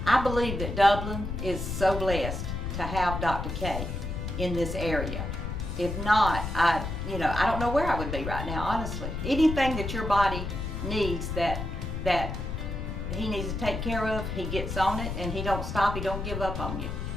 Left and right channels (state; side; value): noise; left; rumble, 4 dB below the sound